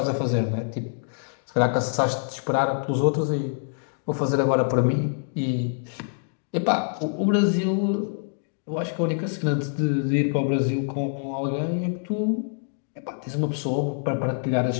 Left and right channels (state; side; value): silent; right; digital silence